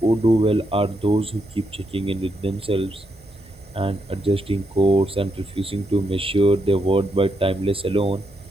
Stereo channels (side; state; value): both; normal; correlation 0.80